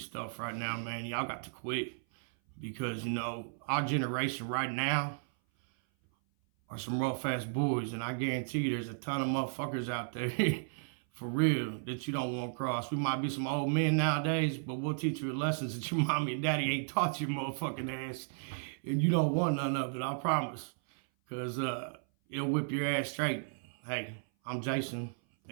stuff right now, man, y'all got to quit. Because, you know, our generation right now are some rough ass boys, and I guarantee you there's a ton of motherfuckers out there for real that you don't want to cross. We might be some old men nowadays, but we'll teach you lessons that your mommy and daddy ain't taught your motherfucking ass, and you don't want none of it, I promise. Because it'll whip your ass straight. Hey, I'm Jason,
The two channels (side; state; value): left; silent; 55 dB below the other